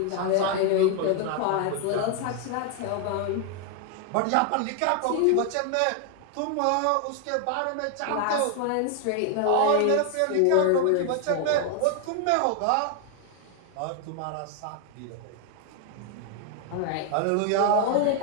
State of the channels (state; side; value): different; both; correlation 0.00